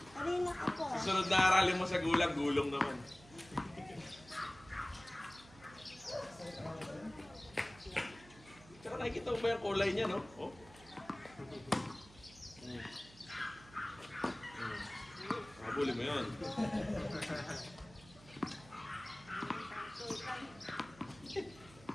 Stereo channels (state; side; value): noise; right; hum, 21 dB below the sound